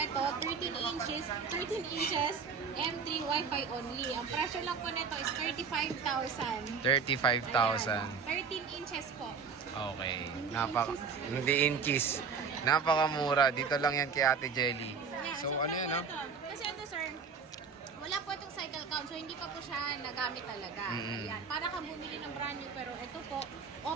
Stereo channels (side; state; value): left; quieter; 5.7 dB